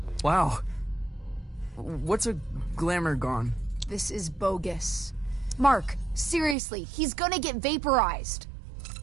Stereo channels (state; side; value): drops out; left; at 6.6 s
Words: Wow. What's a Glamourgon? This is bogus. Mark, seriously, he's gonna get vaporized.